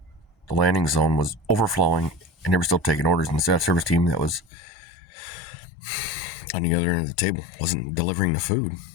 The landing zone was overflowing, and they were still taking orders. And the staff service team that was on the other end of the table wasn't delivering the food.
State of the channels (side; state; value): right; drops out; at 4.5 s